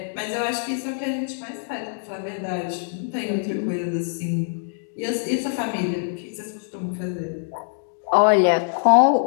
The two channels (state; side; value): silent; right; digital silence